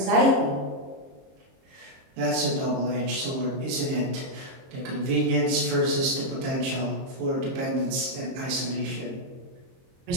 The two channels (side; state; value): left; late; 22 ms